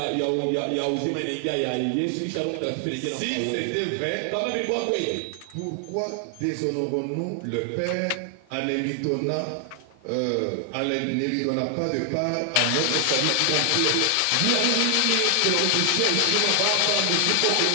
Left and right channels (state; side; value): different; both; correlation 0.00